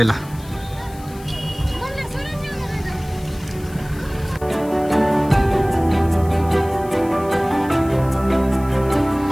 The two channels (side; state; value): left; noise; hiss, 21 dB below the sound